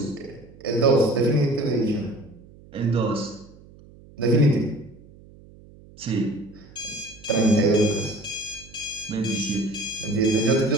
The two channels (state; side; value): noise; right; hum, 23 dB below the sound